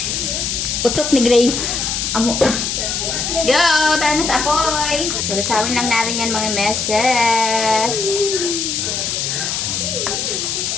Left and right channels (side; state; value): left; noise; hiss, 1 dB below the sound